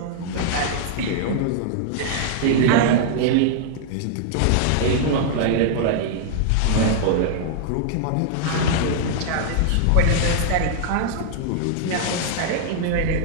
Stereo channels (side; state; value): both; different; correlation -0.01